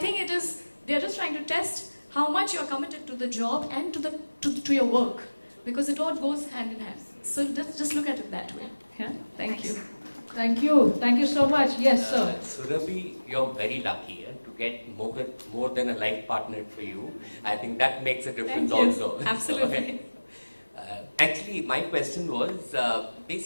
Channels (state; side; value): inverted; both; correlation -1.00